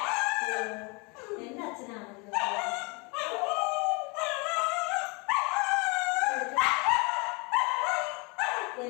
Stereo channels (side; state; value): right; quieter; 29.8 dB